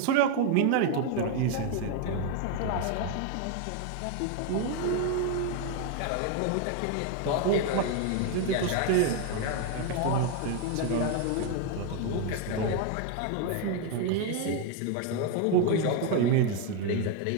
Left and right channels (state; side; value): different; both; correlation 0.01